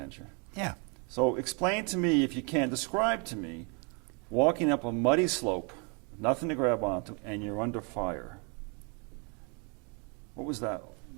Yeah. So explain to me, if you can, describe to me walking up a muddy slope, nothing to grab onto, and you're under fire. What was that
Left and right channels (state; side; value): quieter; left; 34.9 dB